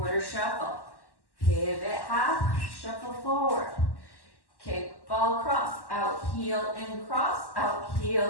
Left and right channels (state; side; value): late; right; 1.1 ms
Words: shuffle. Pivot half, shuffle forward. Kick, ball, cross, out, heel, and cross, out,